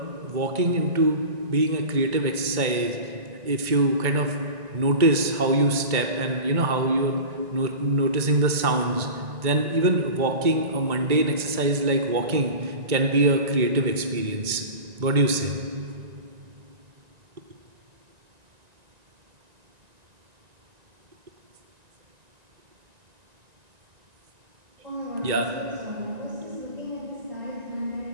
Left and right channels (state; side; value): late; left; 2.2 ms